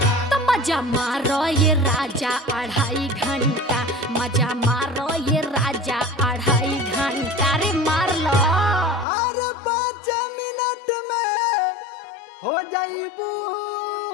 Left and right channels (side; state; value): right; drops out; at 9.1 s